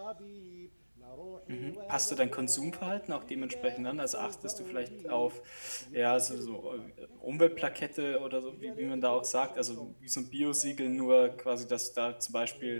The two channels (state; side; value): inverted; both; correlation -1.00